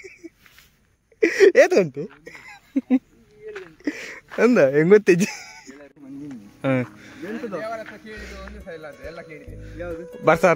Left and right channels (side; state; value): both; identical; correlation 1.00